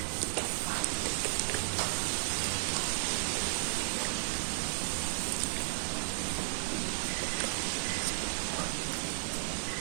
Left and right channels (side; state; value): left; silent; digital silence